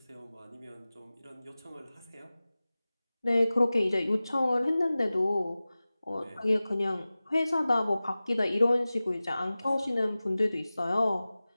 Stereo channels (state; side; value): inverted; both; correlation -0.97